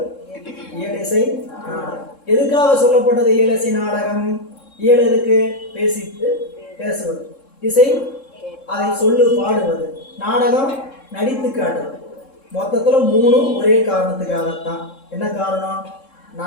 இயல் இசை நாடகம். எதுக்காக சொல்லப்பட்டது இயல் இசை நாடகம்? இயல் எதுக்கு? பேசுவது. இசை அதை சொல்லு பாடுவது. நாடகம் நடித்து காட்டுவது. மொத்தத்தில் 3 ஒரே காரணத்துக்காகத்தான். என்ன காரணம்?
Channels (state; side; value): late; right; 3.7 ms